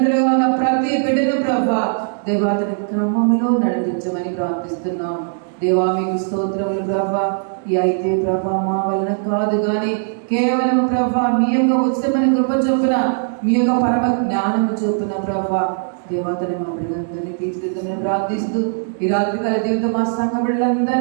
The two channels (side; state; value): left; silent; digital silence